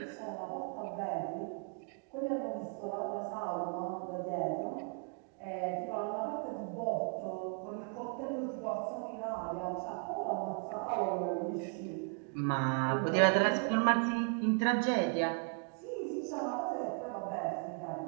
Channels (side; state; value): left; quieter; 39.8 dB